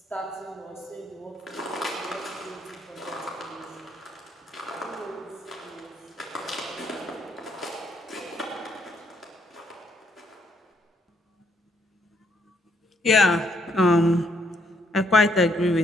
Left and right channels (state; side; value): normal; both; correlation 0.71